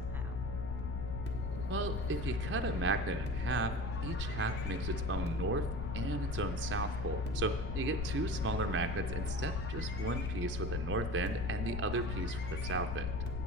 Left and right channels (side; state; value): left; noise; rumble, 2 dB below the sound